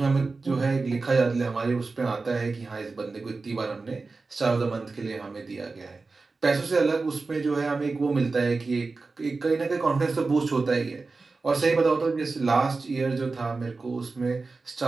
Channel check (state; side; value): quieter; left; 3.9 dB